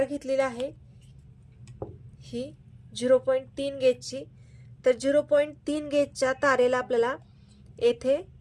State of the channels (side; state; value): both; identical; correlation 1.00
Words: घेतलेली आहे ही 0.3 गेजची. तर 0.3 गेजच्या तारेला आपल्याला येथे